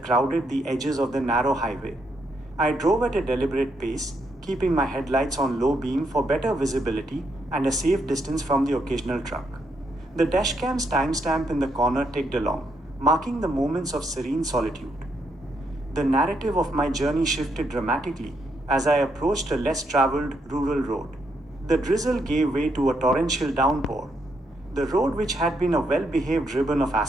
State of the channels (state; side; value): normal; both; correlation 0.77